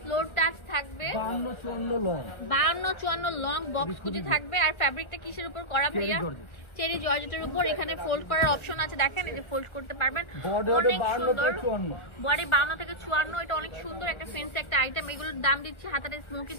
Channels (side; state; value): right; late; 1.3 ms